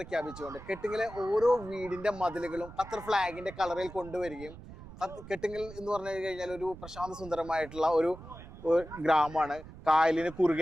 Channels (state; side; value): noise; right; rumble, 16 dB below the sound